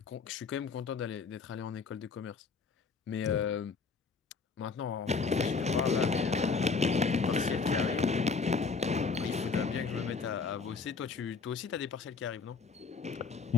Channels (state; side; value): quieter; right; 4.8 dB